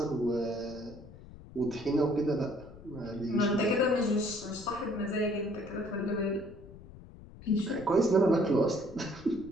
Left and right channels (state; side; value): noise; left; rumble, 18 dB below the sound